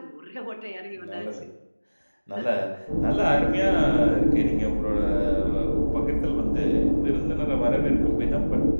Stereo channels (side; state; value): both; inverted; correlation -1.00